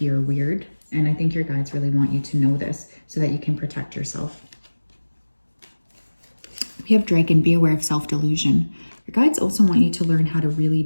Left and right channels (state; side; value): inverted; both; correlation -1.00